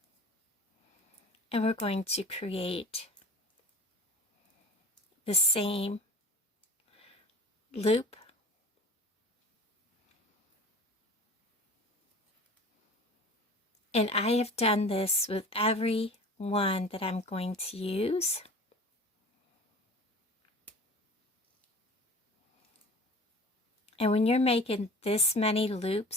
And we're going to create the same loop. And I have done this with every one that I'm going to use. And when you're making this many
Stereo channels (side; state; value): both; normal; correlation 0.41